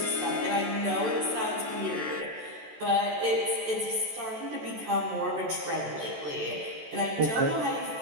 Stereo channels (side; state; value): left; late; 14 ms